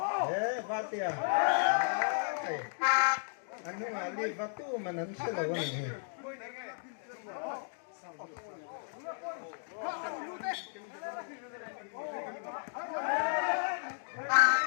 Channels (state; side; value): silent; right; digital silence